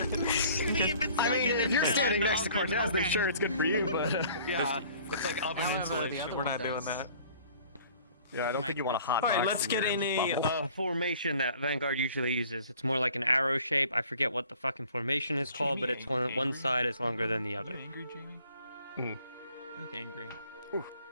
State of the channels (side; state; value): both; inverted; correlation -0.52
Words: if you're standing next to Cortez, then sure, it's good for you, but... Yeah, it's like oven insulation. We're not doing that. Yeah, I don't think you want a hot Alright, box let's in get your in bubble. a formation that Vanguard usually uses. It's more like an arrow shape. I forget what the fucking formation is called, but it's one side is longer than the other. Are you angry, Jamie? You look angry.